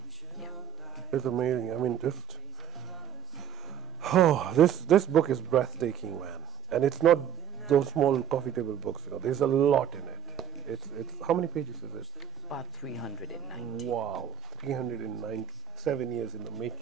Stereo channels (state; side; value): quieter; left; 10.2 dB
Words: Yeah. It's amazing. I mean, this book is breathtaking, man. And it's not those small coffee table books. There's a lot in it. It's how many pages is it? About 390. Wow, 397 years in the